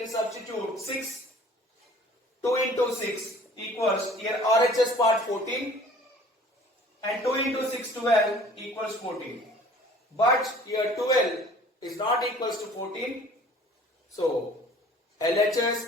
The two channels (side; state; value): both; normal; correlation 0.50